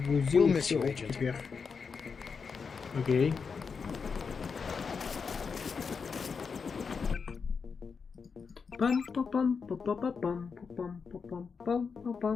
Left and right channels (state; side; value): quieter; right; 5.5 dB